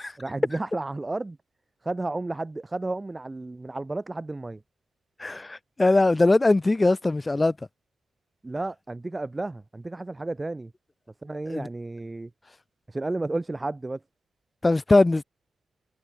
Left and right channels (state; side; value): normal; both; correlation 0.98